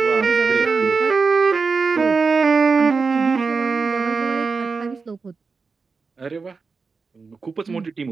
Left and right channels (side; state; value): left; quieter; 4.7 dB